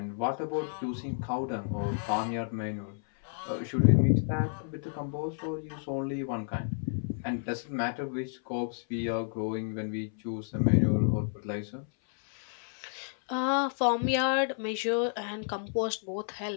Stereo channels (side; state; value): right; silent; 56 dB below the other